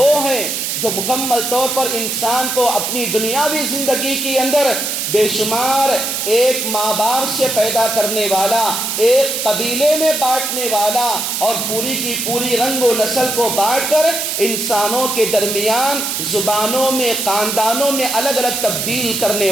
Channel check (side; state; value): right; noise; hiss, 2 dB below the sound